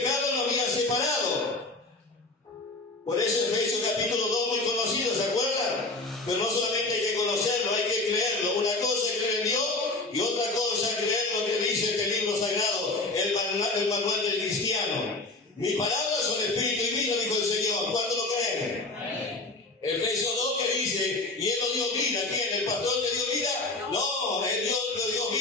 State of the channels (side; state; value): right; quieter; 3.2 dB